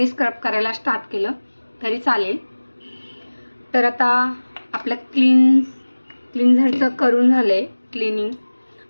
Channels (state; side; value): inverted; both; correlation -1.00